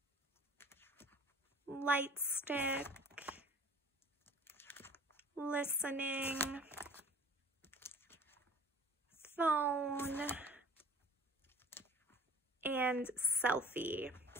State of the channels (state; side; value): normal; both; correlation 0.47